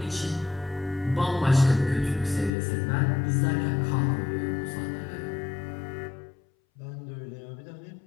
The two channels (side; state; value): right; drops out; at 2.5 s